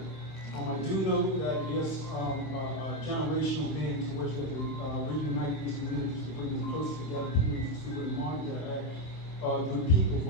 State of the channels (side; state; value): right; late; 26 ms